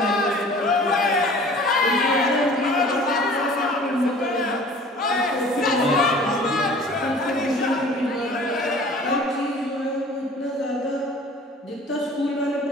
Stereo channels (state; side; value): normal; both; correlation 0.47